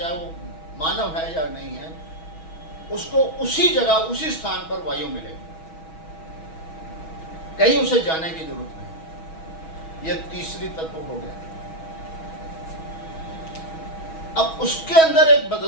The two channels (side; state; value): right; late; 6.2 ms